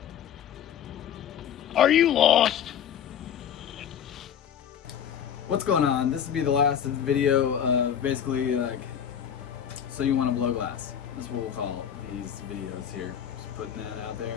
Are you lost? What's going on? This will be the last video of basically so you want to blow glass. That's what we'll call these videos here. Just putting that out there.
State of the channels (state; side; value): quieter; right; 8.9 dB